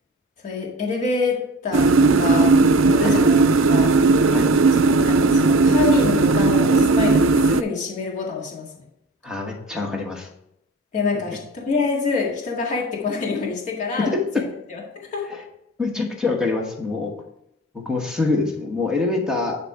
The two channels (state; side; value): normal; both; correlation 0.38